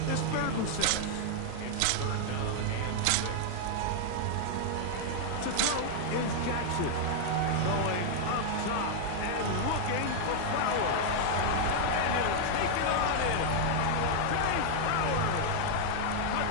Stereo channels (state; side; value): different; both; correlation 0.00